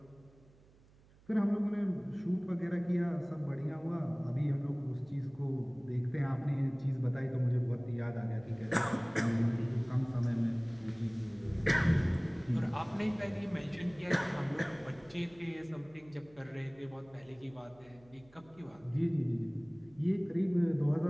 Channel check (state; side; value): noise; right; hum, 27 dB below the sound